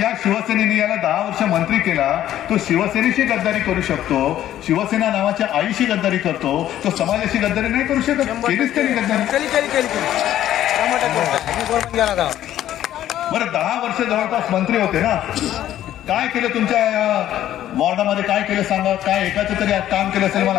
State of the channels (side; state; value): right; quieter; 12.3 dB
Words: शिवसेनेने याला 10 वर्ष मंत्री केला तो शिवसेनेशी गद्दारी करू शकतो, शिवसेना नावाच्या आईशी गद्दारी करतो, तो समाजाशी गद्दारी नाही करू शकत. केलीच तरी गद्दारी. बरं 10 वर्ष जवळपास मंत्री होते ना, काय केलं तुमच्या वॉर्डामध्ये? काय केलं सांगा. काय एकाचं तरी काम केलं असेल?